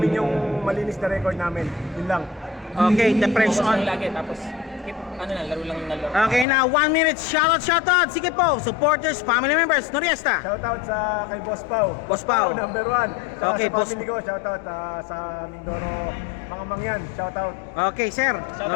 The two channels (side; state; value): right; drops out; at 6.5 s